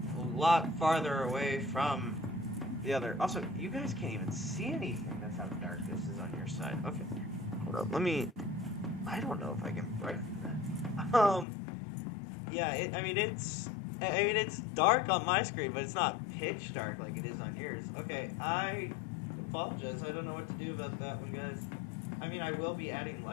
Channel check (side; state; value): right; drops out; at 11.5 s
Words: a lot farther away from the other. Also, you guys can't even see anything. That's how dark this is on your side. Okay. Hold up. Let me... I don't know if I can brighten that. Yeah, it's dark on my screen, but it's not pitch dark like it is on yours. Okay, I apologize. I don't know what to do about that one, guys. I mean, I will be adding